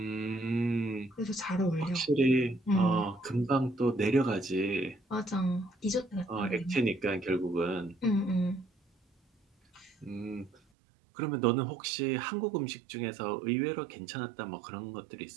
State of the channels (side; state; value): left; drops out; at 10.6 s